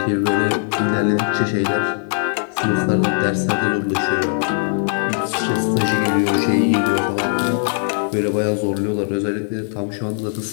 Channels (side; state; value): right; silent; 59 dB below the other